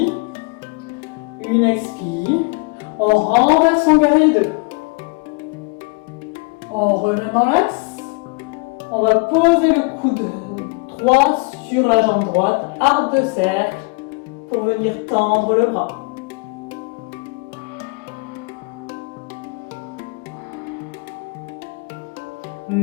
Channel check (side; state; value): right; quieter; 30.7 dB